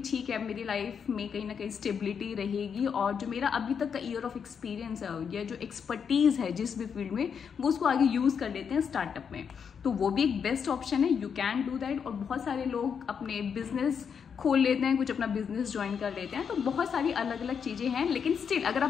ठीक है मेरी लाइफ में कहीं ना कहीं स्टेबिलिटी रहेगी और जो मेरा अभी तक का ईयर ऑफ एक्सपीरियंस है या जो एक्सपर्टीज़ है जिस भी फील्ड में, वो उसको आगे यूज़ कर लेते हैं स्टार्टअप में। तो वो भी एक बेस्ट ऑप्शन है, यू कैन डू दैट। और बहुत सारे लोग अपने बिजनेस खोल लेते हैं, कुछ अपना बिजनेस ज्वाइन कर लेते हैं। तो बहुत सारी अलग अलग चीज़ें हैं, लेकिन स्टिल अगर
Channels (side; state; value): right; quieter; 6.9 dB